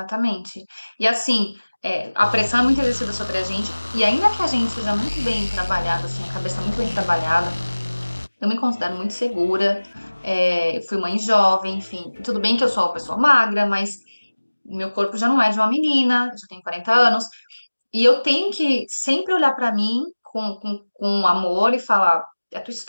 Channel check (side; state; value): both; inverted; correlation -1.00